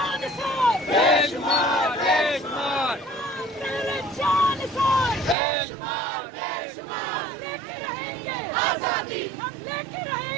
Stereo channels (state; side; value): drops out; left; at 5.4 s